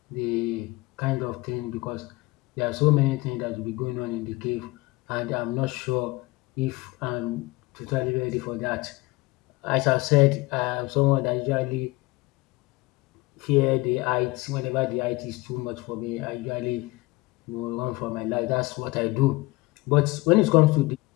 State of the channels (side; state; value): right; quieter; 22.0 dB